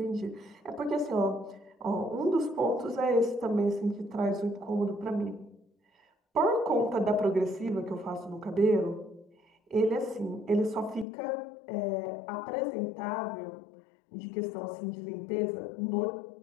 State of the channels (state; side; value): drops out; right; at 11.1 s